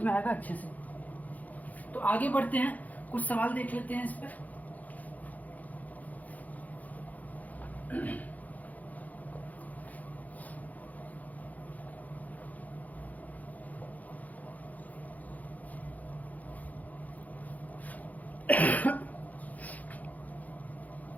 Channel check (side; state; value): right; late; 0.078 ms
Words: में आएगा अच्छे से। तो आगे बढ़ते हैं, कुछ सवाल देख लेते हैं इस पे।